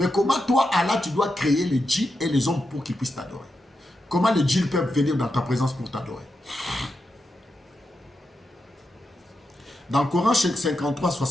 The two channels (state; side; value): normal; both; correlation 0.87